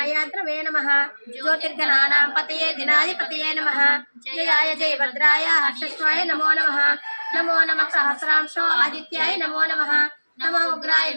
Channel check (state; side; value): inverted; both; correlation -1.00